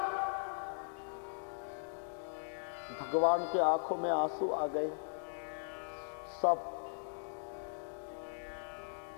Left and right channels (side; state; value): right; silent; digital silence